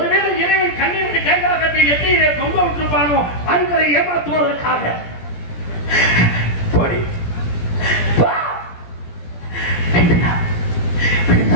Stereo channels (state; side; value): late; right; 17 ms